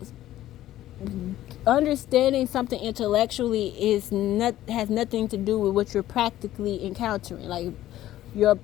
understanding something intellectually has nothing to do with what you're practically encountering. Like your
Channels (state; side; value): quieter; right; 13.8 dB